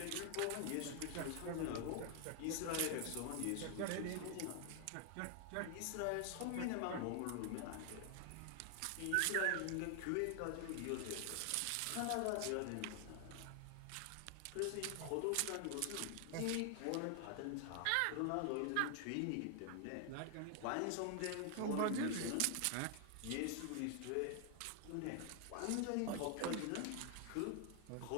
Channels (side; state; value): both; different; correlation 0.00